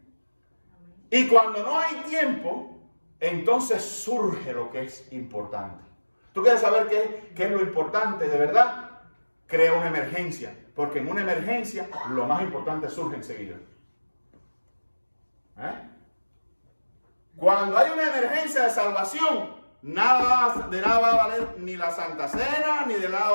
Y cuando no hay tiempo, entonces surge lo que es importante. ¿Tú quieres saber qué es lo importante de verdad? Crea una emergencia. Porque en una emergencia lo más importante surge enseguida. Cuando hay una emergencia de salvación, de nada va a valer ni la Santa Cena, ni de nada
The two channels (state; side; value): inverted; both; correlation -1.00